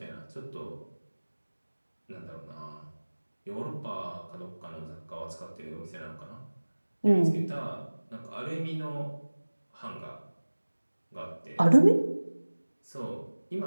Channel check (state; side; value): inverted; both; correlation -1.00